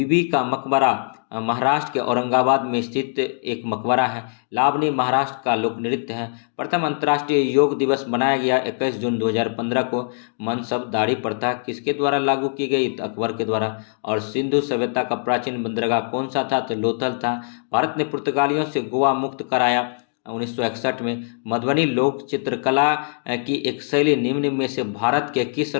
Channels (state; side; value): silent; right; digital silence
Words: का मकबरा महाराष्ट्र के औरंगाबाद में स्थित एक मकबरा है। लावनी महाराष्ट्र का लोक नृत्य है। प्रथम अंतर्राष्ट्रीय योग दिवस मनाया गया 21 जून 2015 को। मनसब दाढ़ी प्रथा किसके द्वारा लागू की गई? तो अकबर के द्वारा। और सिंधु सभ्यता का प्राचीन बंदरगाह कौन सा था? तो लोथल था। भारत ने पुर्तगालियों से गोवा मुक्त कराया 1961 में। मधुबनी लोक चित्रकला की एक शैली निम्न में से भारत के किस